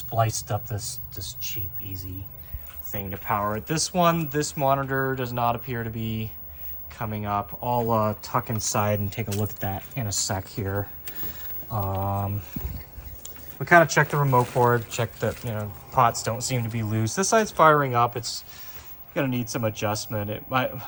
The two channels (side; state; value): both; identical; correlation 1.00